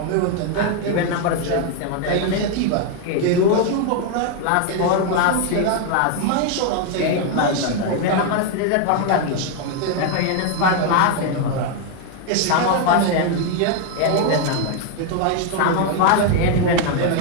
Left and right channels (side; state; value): both; different; correlation 0.01